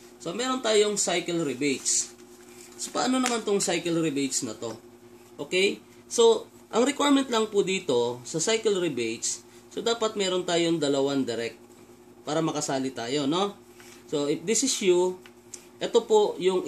So, meron tayong cycle rebates. So, paano naman tong cycle rebates na to? Okay? So, ang requirement lang po dito sa cycle rebates, so, dapat meron tayong dalawang direct para makasali tayo, no? So, if this is you, ito po yung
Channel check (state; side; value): identical; both; correlation 1.00